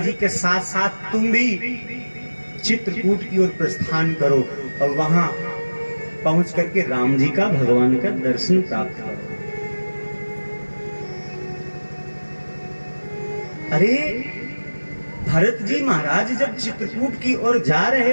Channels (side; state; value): both; inverted; correlation -1.00